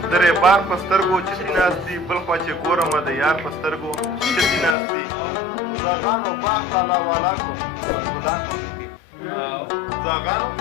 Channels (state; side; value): drops out; right; at 4.8 s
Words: درې بار په سترګو چتي ناستي بل خوا چې ګورم د یار په سترګو چتي ناستي زاغانو باغ تالا والا کړو بلبلان هم پکې زاغانو